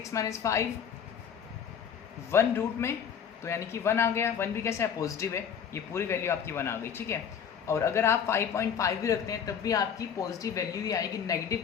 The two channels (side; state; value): right; quieter; 7.8 dB